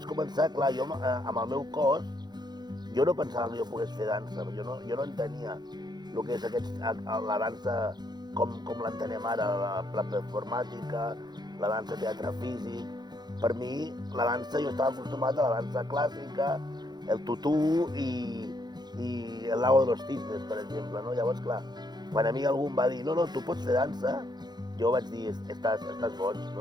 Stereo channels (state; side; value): late; left; 0.20 ms